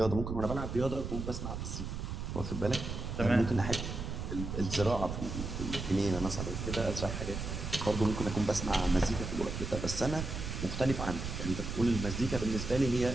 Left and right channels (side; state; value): right; noise; rumble, 5 dB below the sound